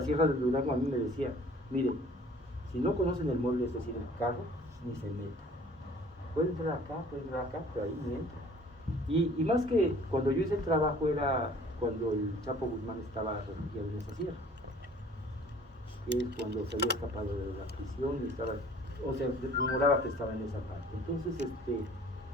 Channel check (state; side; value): normal; both; correlation 0.52